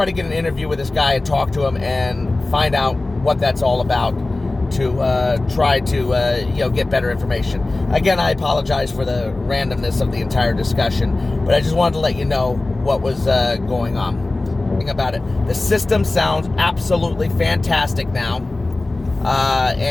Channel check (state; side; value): quieter; right; 3.0 dB